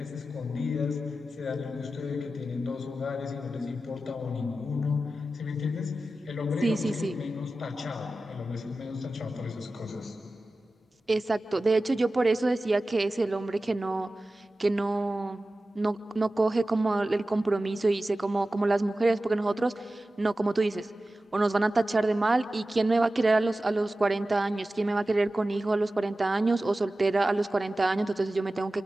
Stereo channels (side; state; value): both; normal; correlation 0.95